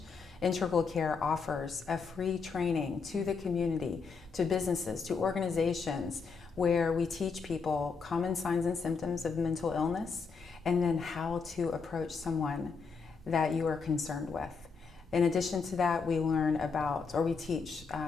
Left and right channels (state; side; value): quieter; right; 5.1 dB